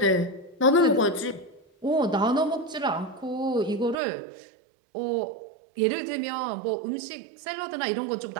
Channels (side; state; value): left; drops out; at 4.0 s